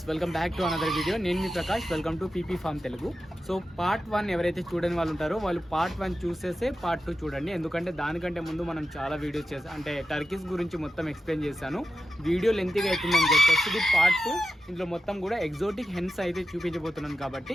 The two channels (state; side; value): normal; both; correlation 0.91